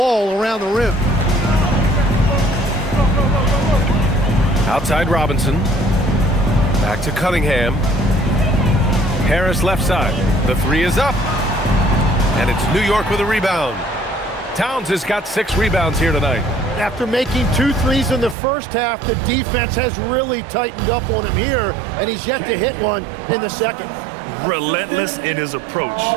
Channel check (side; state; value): left; drops out; at 18.4 s